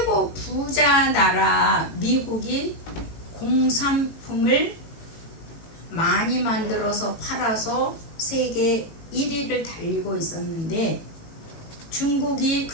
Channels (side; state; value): right; late; 18 ms